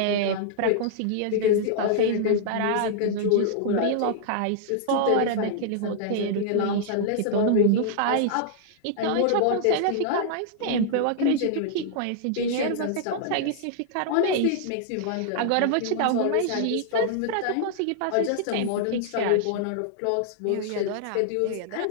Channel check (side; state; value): both; different; correlation -0.01